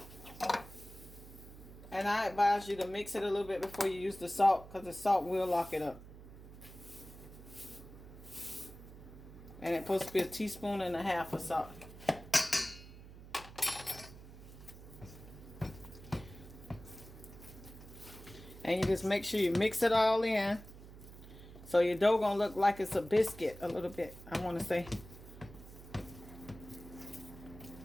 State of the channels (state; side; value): noise; right; hum, 16 dB below the sound